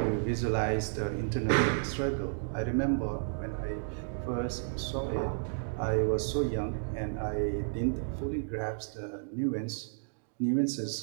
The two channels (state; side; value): silent; left; digital silence